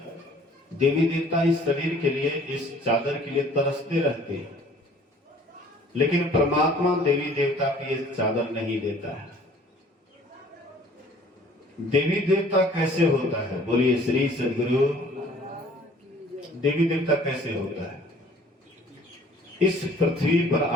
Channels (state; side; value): normal; both; correlation 0.53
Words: देवी देवता इस शरीर के लिए, इस चादर के लिए तरसते रहते हैं, लेकिन परमात्मा देवी देवता की ये चादर नहीं देता है। देवी देवता कैसे होता है? बोलिए श्री सद्गुरु। देवी देवता कैसे होता है? इस पृथ्वी पर